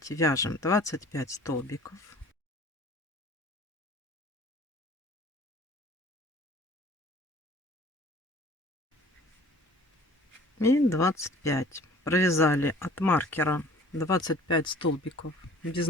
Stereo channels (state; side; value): normal; both; correlation 0.49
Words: вяжем 25 столбиков. И 25. Провязали от маркера 25 столбиков без